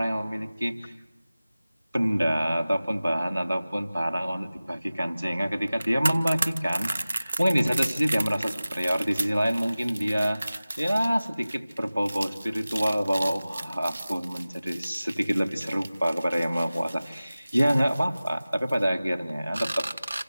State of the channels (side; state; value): both; inverted; correlation -0.97